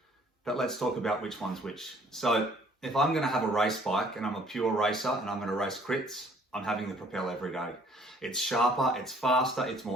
But let's talk about which one's which. So if I'm going to have a race bike and I'm a pure racer and I'm going to race crits, I'm having the Propel every day. It's sharper, it's faster, it's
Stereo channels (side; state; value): both; normal; correlation 0.58